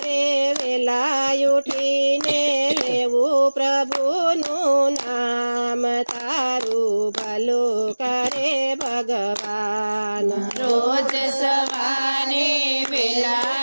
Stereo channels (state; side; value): inverted; both; correlation -1.00